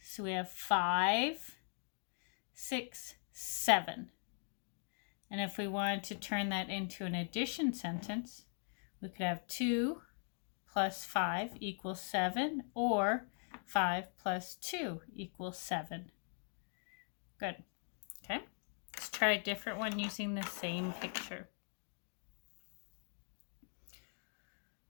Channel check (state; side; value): silent; right; 50 dB below the other